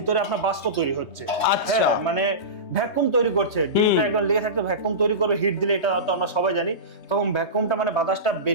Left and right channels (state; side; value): late; right; 3.2 ms